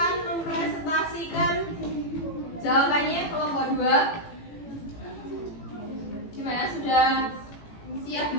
mempresentasikan jawabannya. Kelompok 2 gimana, sudah siap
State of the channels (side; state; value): right; late; 18 ms